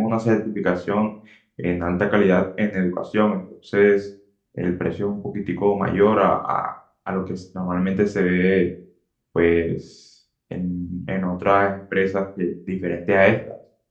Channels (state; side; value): identical; both; correlation 1.00